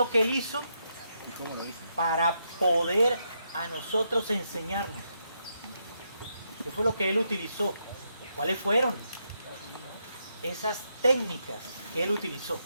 que Él hizo para poder a nosotros enseñarnos? ¿Qué fue lo que Él utilizó? ¿Cuáles fueron esas técnicas que Él utilizó?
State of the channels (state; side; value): inverted; both; correlation -0.81